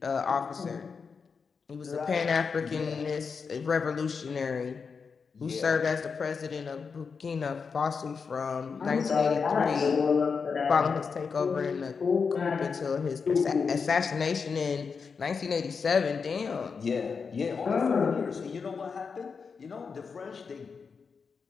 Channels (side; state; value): right; quieter; 5.5 dB